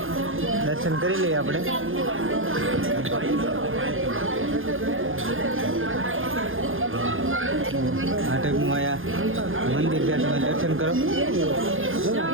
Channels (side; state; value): left; late; 0.59 ms